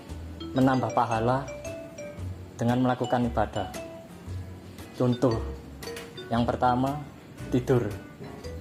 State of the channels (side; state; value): both; identical; correlation 1.00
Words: menambah pahala dengan melakukan ibadah. Contoh yang pertama, tidur.